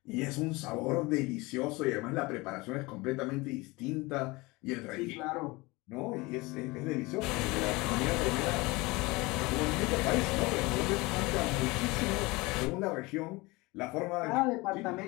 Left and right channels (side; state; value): right; quieter; 23.4 dB